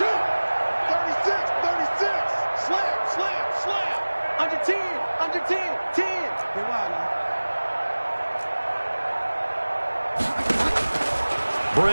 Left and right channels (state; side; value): inverted; both; correlation -1.00